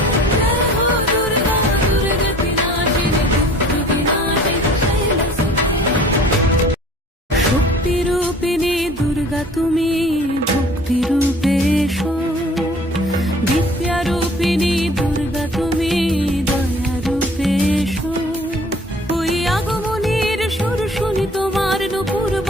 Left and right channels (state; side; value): normal; both; correlation 0.50